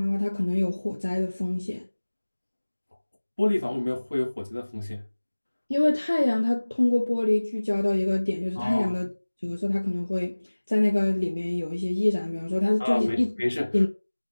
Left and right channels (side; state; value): both; inverted; correlation -1.00